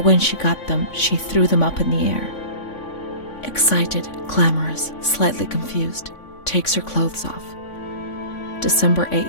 when she got them, she threw them up in the air. Excited, clamorous, slightly confused, takes her clothes off. December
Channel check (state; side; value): late; right; 3.5 ms